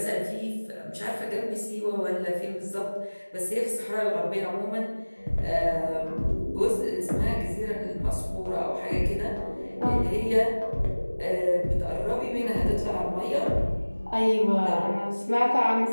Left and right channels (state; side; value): inverted; both; correlation -1.00